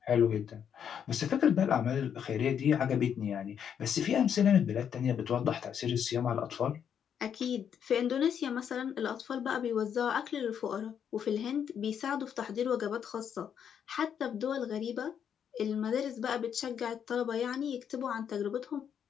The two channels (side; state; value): right; quieter; 8.3 dB